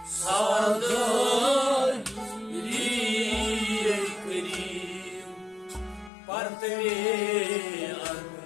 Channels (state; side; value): drops out; right; at 6.1 s